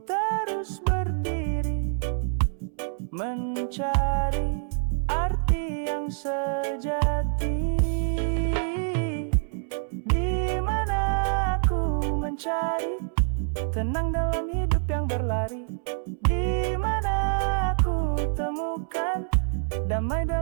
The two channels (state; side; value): silent; left; 61 dB below the other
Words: terus berdiri, mencari arti yang sejati. Di mana aku mencari tenang dalam hidup yang berlari? Di mana aku temukan damai